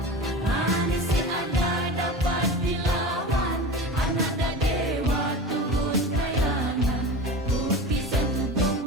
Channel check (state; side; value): normal; both; correlation 0.30